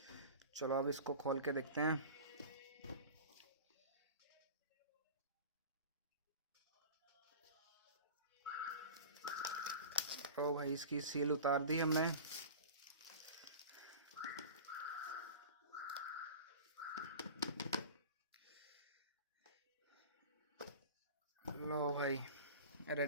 चलो अब इसको खोल के देखते हैं। ओ भाई, इसकी सील उतार दी हमने। लो भाई,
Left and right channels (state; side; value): inverted; both; correlation -0.35